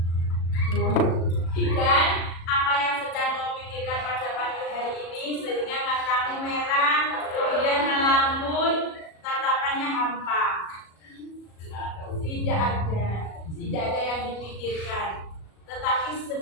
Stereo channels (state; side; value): late; right; 37 ms